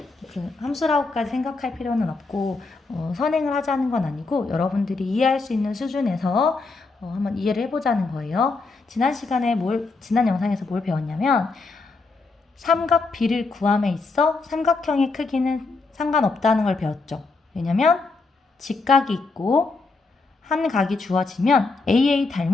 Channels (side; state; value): right; quieter; 3.9 dB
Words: 그 함수라고까지 생각할 필요는 없고 선행을 하자는 건 아니고 여러분들이 이해할 수 있는 수준에서 한번 이해를 해보자는 거예요. 지난 영상에서 뭘 배웠냐면 삼각 B를 구함에 있어 삼각형의 크기는 상관없다는 걸 배웠죠. 왜냐면 직각이 있고 한 각이 주어지면 AA